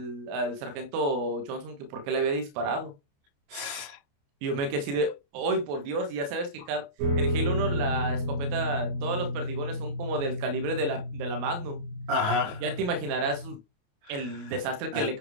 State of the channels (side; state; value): left; late; 28 ms